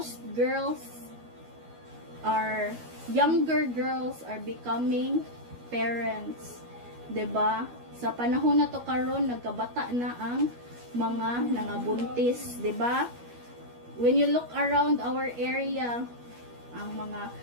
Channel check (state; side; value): late; left; 12 ms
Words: younger girls are becoming parents. 'Di ba? Sa panahon na to karon nagkabata na ang mga nangabuntis, 'di ba? When you look around our area, ang